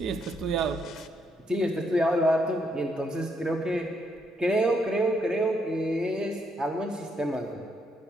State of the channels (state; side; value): normal; both; correlation 0.75